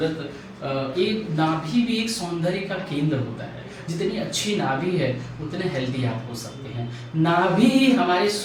एक नाभि भी एक सौंदर्य का केंद्र होता है। जितनी अच्छी नाभि है उतने हेल्दी आप हो सकते हैं। नाभि हमारे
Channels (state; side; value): identical; both; correlation 1.00